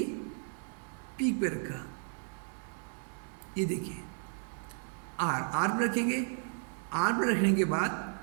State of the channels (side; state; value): left; silent; 55 dB below the other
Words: पीक पे रखा। ये देखिए आर पर रखेंगे। आर पर रखने के बाद